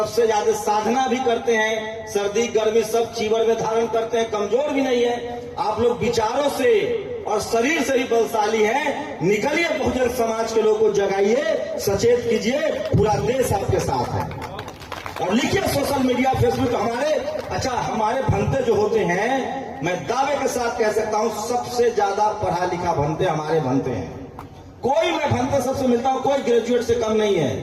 ज्यादा साधना भी करते हैं, सर्दी गर्मी सब चीवर में धारण करते हैं, कमजोर भी नहीं है। आप लोग विचारों से और शरीर से ही बलशाली हैं। निकलिए, बहुजन समाज के लोगों को जगाइए, सचेत कीजिए, पूरा देश आपके साथ है। और लिखिए सोशल मीडिया, फेसबुक, हमारे भंते जो होते हैं, मैं दावे के साथ कह सकता हूं सबसे ज्यादा पढ़ा लिखा भंते हमारे भंते हैं। कोई मैं भंते सबसे मिलता हूं, कोई ग्रेजुएट से कम नहीं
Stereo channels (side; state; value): both; identical; correlation 1.00